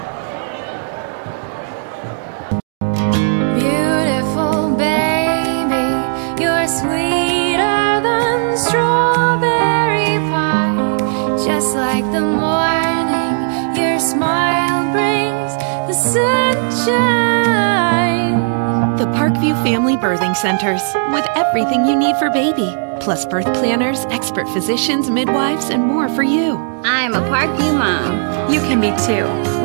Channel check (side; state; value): left; silent; digital silence